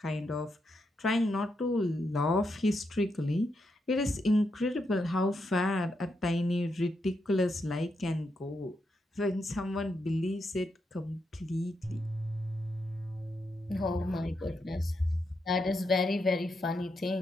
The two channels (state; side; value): normal; both; correlation 0.82